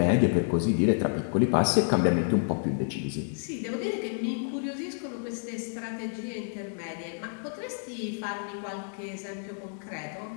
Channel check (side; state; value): right; silent; 58 dB below the other